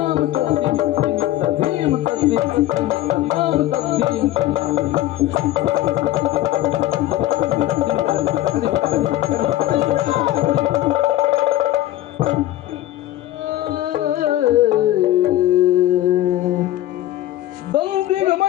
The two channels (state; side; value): quieter; right; 14.3 dB